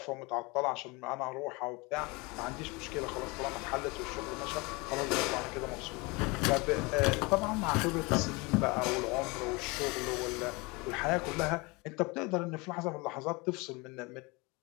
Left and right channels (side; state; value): right; quieter; 26.2 dB